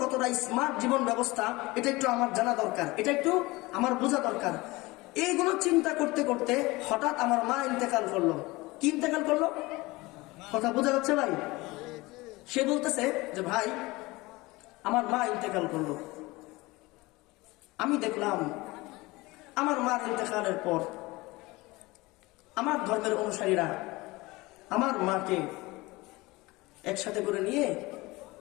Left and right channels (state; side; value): quieter; right; 21.8 dB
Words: কতটা স্মার্ট জীবন ব্যবস্থা, এটা একটু আমার জানা দরকার, এটা একটু আমার বোঝা দরকার। এইগুলো চিন্তা করতে করতে হঠাৎ আমার মা ইন্তেকাল করলো। কি ইন্তেকাল করলো? কথা বোঝা যাচ্ছে ভাই? সে বলতেছে যে ভাই, আমার মা ইন্তেকাল করলো। আমি দেখলাম আমার মার ইন্তেকালের পর আমার ধর্মের অনুসারীরা আমার মাকে একসাথে করে নিয়ে